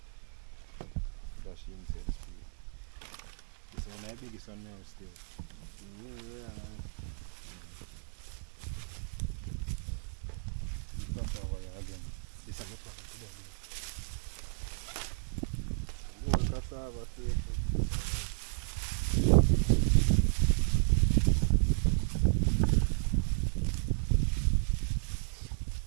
Dash inside the street. This one I biggest one now still. Yeah, man. Cross over here again. This is not one today. More cassava station.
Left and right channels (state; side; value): silent; left; digital silence